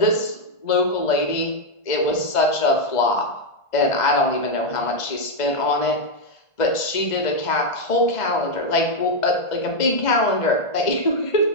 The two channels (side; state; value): right; late; 1.5 ms